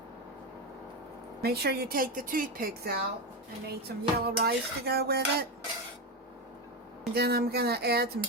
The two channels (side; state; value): both; normal; correlation 0.13